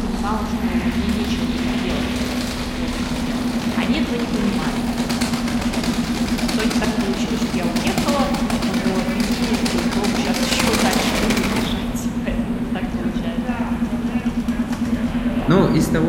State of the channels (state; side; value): identical; both; correlation 1.00